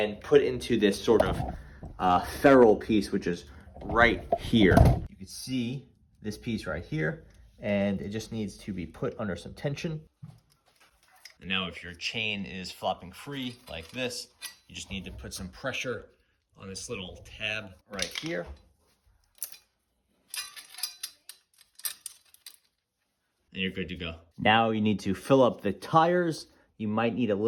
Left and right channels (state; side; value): identical; both; correlation 1.00